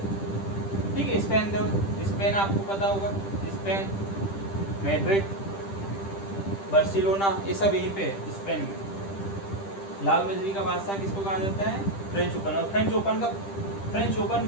ठीक है। स्पेन आपको पता होगा, स्पेन, मैड्रिड, बार्सिलोना, ये सब यहीं पे है स्पेन में। लाल बजरी का बादशाह किसको कहा जाता है, फ्रेंच ओपन। और फ्रेंच ओपन का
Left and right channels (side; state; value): right; late; 10 ms